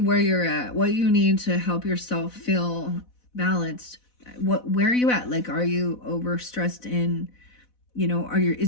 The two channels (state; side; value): late; right; 4.1 ms